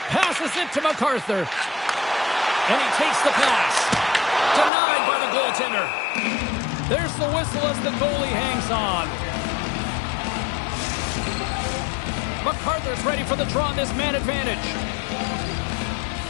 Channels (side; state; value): right; drops out; at 4.7 s